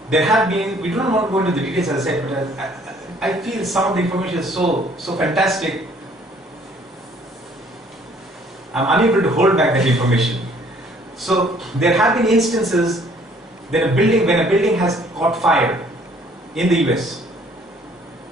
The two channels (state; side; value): normal; both; correlation 0.59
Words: There have been, we don't want to go into the details as I said, but I feel some of the information is so fantastic. I'm unable to hold back that information. So there have been instances that when a building has caught fire in the US.